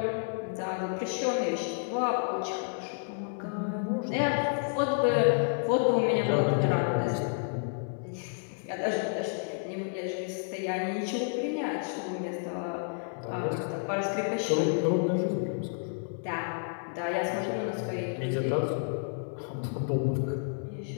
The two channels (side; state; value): right; silent; digital silence